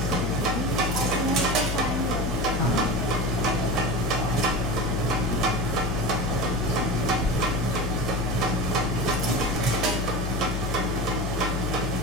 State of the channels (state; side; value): noise; left; hum, 2 dB below the sound